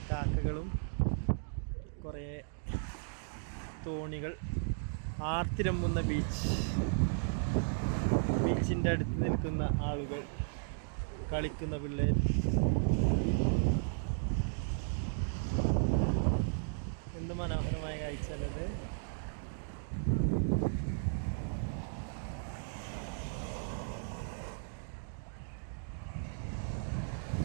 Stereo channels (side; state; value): left; silent; digital silence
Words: കാക്കകളും കുറേ തോണികൾ, ആർത്തിരമ്പുന്ന ബീച്ചിൻ്റെ അടുത്ത് നിൽക്കുന്ന ആളുകൾ, കളിക്കുന്ന പിള്ളേർ. എന്ത് മനോഹരമായ കാഴ്ചയല്ലത്.